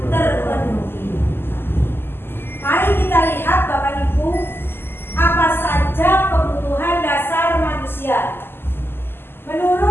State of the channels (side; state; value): right; late; 0.11 ms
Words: terpenuhi. Mari kita lihat Bapak Ibu, apa saja kebutuhan dasar manusia.